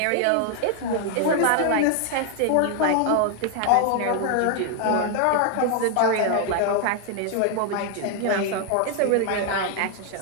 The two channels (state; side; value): different; both; correlation 0.00